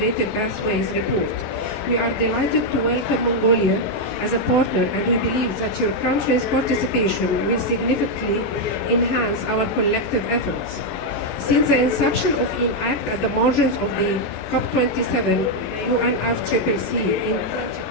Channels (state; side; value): late; right; 28 ms